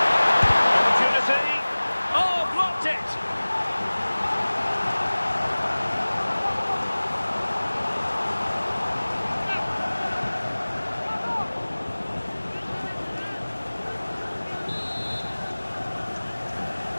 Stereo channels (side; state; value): both; inverted; correlation -1.00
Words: Opportunity. Oh, blocked it.